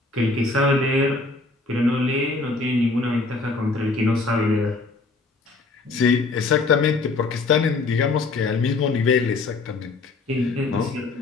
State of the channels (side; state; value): right; quieter; 3.6 dB